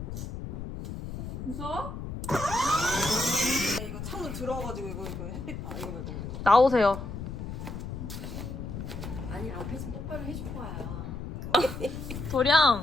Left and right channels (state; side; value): noise; left; rumble, 7 dB below the sound